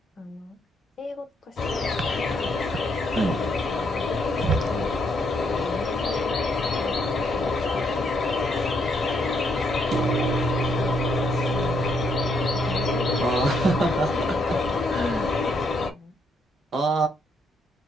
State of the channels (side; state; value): both; normal; correlation 0.74